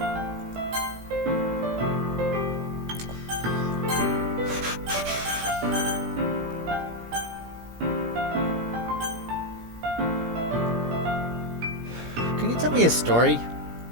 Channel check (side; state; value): left; late; 17 ms